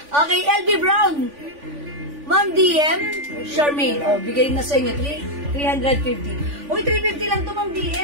Okay, LV Brown. Ma'am DM, Charmaine. O, bigay na sa inyo. 350. Uy, 350 lang to, Ma'am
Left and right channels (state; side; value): late; left; 3.5 ms